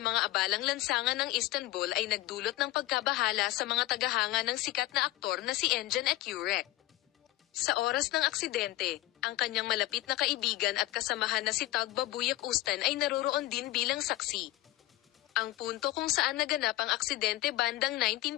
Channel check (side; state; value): right; quieter; 16.8 dB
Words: mga abalang lansangan ng Istanbul ay nagdulot ng pagkabahala sa mga tagahanga ng sikat na aktor na si Engin Akyurek. Sa oras ng aksidente, ang kanyang malapit na kaibigan at kasamahan na si Tugba Büyüküstün ay naroroon din bilang saksi. Ang punto kung saan naganap ang aksidente bandang